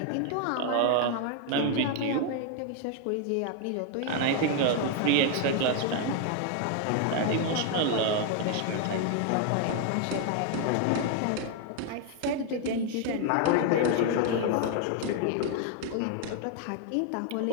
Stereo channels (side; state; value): both; different; correlation 0.00